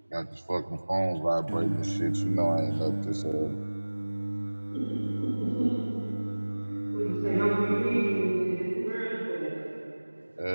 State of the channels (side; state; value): both; inverted; correlation -1.00